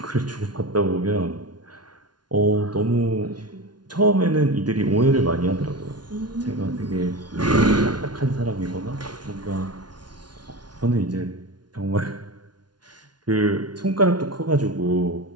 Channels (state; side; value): late; left; 0.70 ms